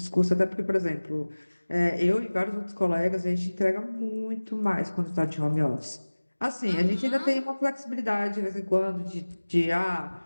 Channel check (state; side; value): inverted; both; correlation -1.00